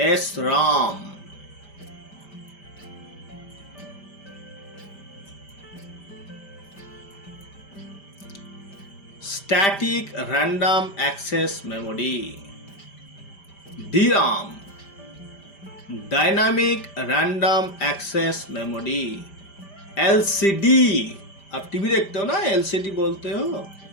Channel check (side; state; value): right; late; 5.1 ms